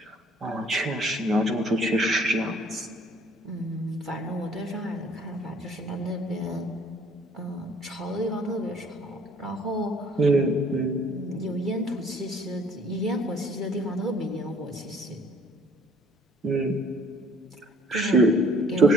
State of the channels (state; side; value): normal; both; correlation 0.57